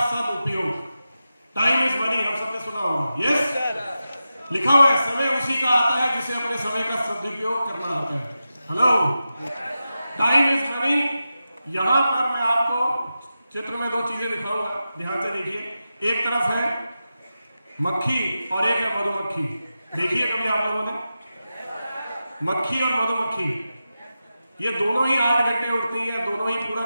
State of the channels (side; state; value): both; inverted; correlation -0.91